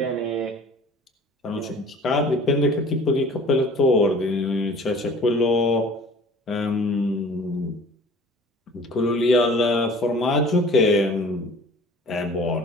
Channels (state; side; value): normal; both; correlation 0.47